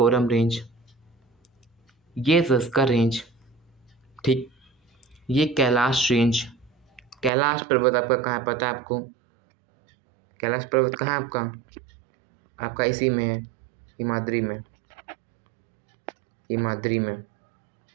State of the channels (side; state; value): left; drops out; at 7.3 s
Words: रेंज, ये जस्कर रेंज, ठीक, ये कैलाश रेंज। कैलाश पर्वत आपका कहाँ है पता है आपको, कैलाश पर्वत कहाँ है आपका, आपका इसी में है, हिमाद्री में, हिमाद्री में,